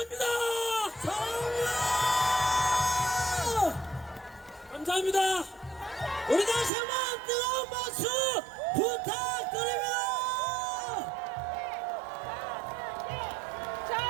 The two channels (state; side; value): drops out; left; at 6.7 s